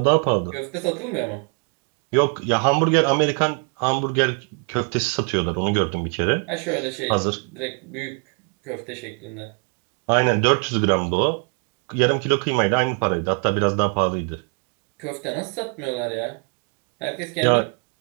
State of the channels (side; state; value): left; quieter; 38.5 dB